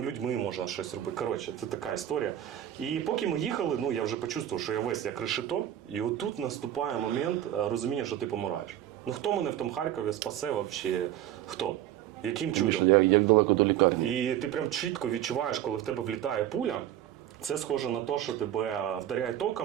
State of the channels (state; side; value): quieter; left; 11.9 dB